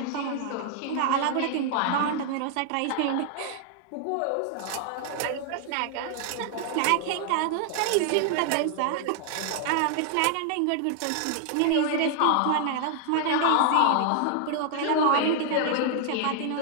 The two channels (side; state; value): both; different; correlation 0.00